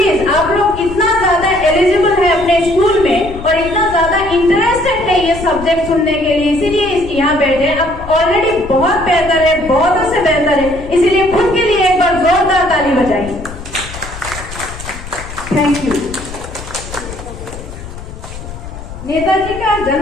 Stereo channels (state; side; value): noise; left; rumble, 12 dB below the sound